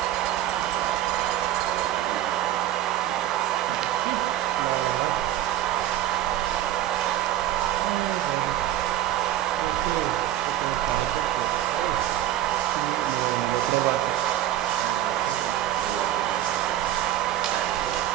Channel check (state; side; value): quieter; left; 12.8 dB